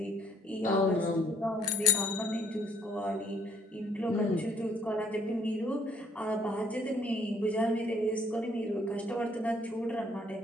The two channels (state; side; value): normal; both; correlation 0.64